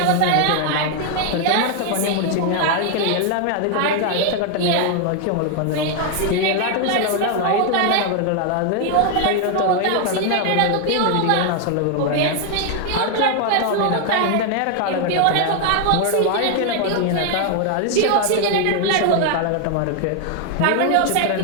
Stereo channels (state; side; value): different; both; correlation 0.00